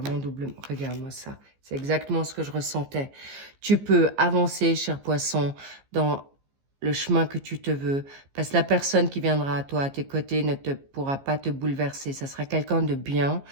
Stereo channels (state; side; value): late; left; 15 ms